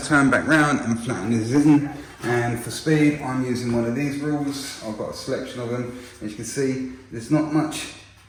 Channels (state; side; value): identical; both; correlation 1.00